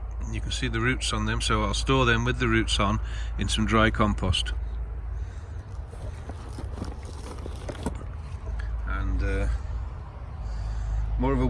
You can see the roots on them, so I'll store them with the roots on in some dry compost. And more of a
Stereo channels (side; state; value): both; identical; correlation 1.00